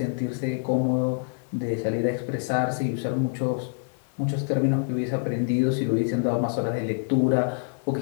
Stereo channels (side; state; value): right; silent; digital silence